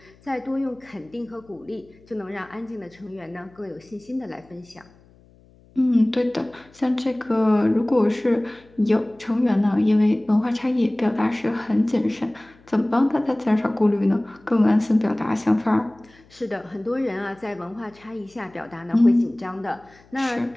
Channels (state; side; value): noise; left; hum, 28 dB below the sound